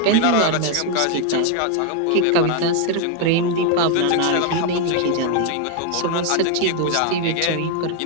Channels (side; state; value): both; different; correlation 0.01